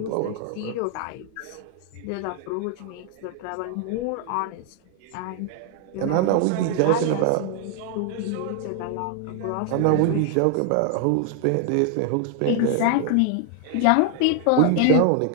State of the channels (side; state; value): both; different; correlation 0.00